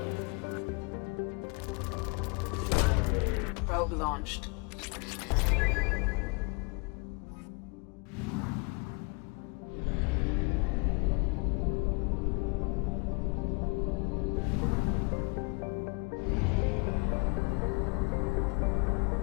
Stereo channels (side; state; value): right; quieter; 31.8 dB